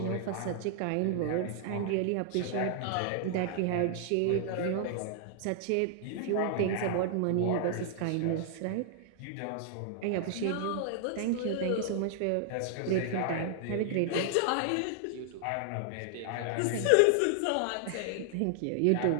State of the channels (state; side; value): different; both; correlation -0.01